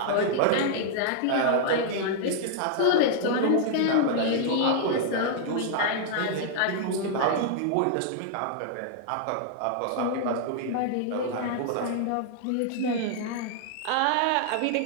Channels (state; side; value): different; both; correlation -0.01